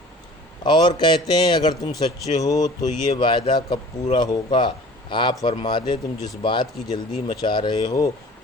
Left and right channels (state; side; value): normal; both; correlation 0.45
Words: اور کہتے ہیں اگر تم سچے ہو تو یہ وعدہ کب پورا ہوگا؟ آپ فرما دیں تم جس بات کی جلدی مچا رہے ہو